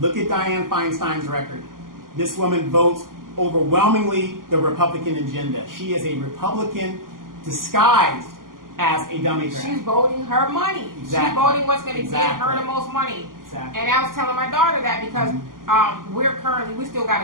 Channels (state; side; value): late; left; 0.91 ms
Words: at Dianne Feinstein's record. This woman votes overwhelmingly the Republican agenda. She is a Republican disguised as a Democrat. She's voting her money. Exactly. She's voting what's going to get her the most money. Exactly. And I was telling my daughter that because we still